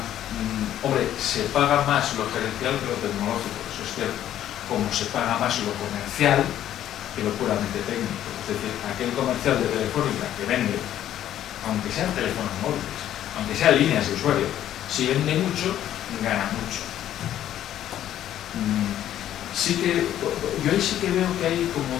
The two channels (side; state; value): right; quieter; 11.7 dB